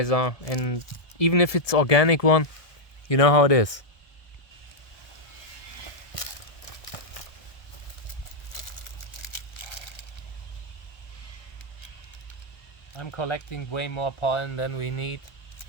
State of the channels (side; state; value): right; late; 1.2 ms